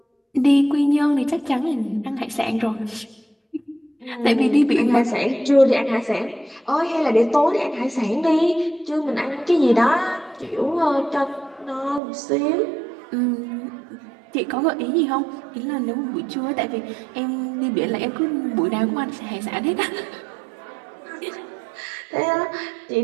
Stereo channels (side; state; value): left; drops out; at 12.0 s